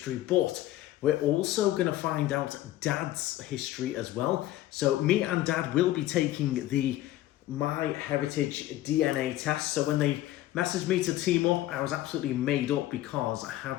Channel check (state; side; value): quieter; right; 15.0 dB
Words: but we're also going to find out Dad's history as well. So me and Dad will be taking the MyHeritage DNA test. So when they messaged me to team up, I was absolutely made up because I